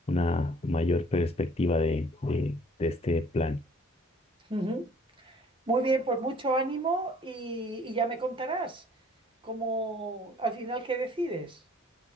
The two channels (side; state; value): both; normal; correlation 0.56